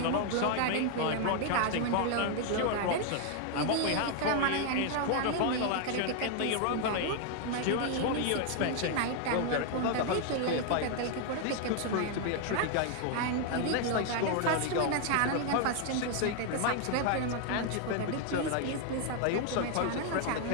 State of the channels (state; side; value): different; both; correlation 0.00